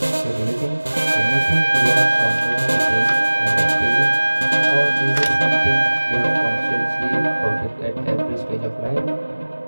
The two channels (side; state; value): both; inverted; correlation -1.00